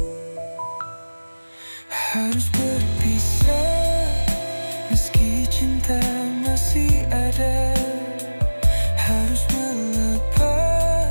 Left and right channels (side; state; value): both; inverted; correlation -1.00